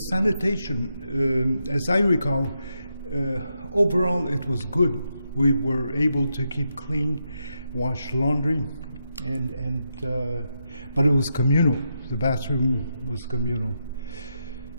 sanitation, as I recall, overall it was good. We were able to keep clean, wash laundry, but it was communal. The bathroom was communal.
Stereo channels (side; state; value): both; inverted; correlation -0.83